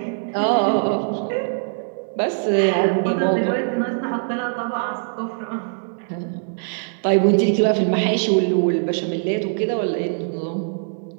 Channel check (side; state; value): left; silent; digital silence